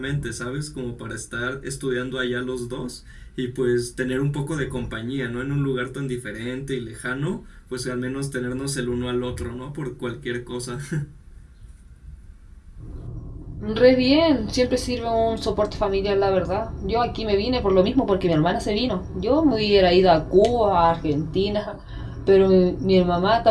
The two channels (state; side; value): identical; both; correlation 1.00